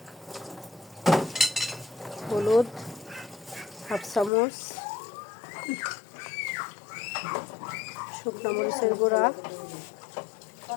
হলুদ 1/2 চামচ, শুকনো মরিচের গুঁড়া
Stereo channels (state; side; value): drops out; right; at 4.3 s